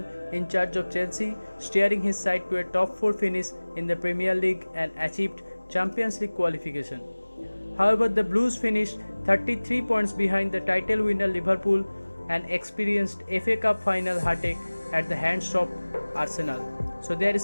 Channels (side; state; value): both; inverted; correlation -1.00